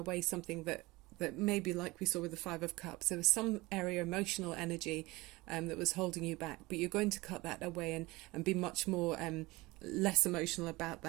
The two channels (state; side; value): quieter; left; 21.6 dB